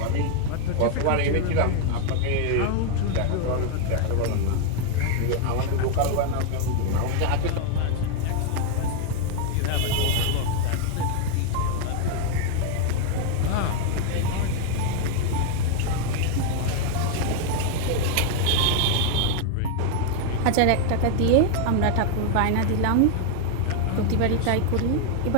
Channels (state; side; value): different; both; correlation 0.01